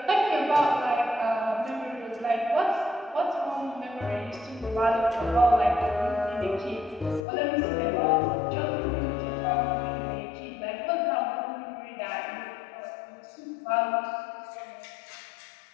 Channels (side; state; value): right; drops out; at 7.2 s